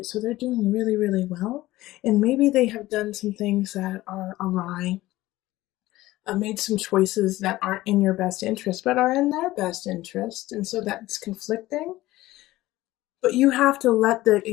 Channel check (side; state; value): right; quieter; 17.2 dB